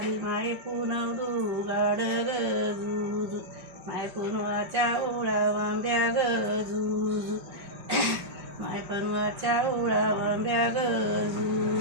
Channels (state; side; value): late; left; 5.3 ms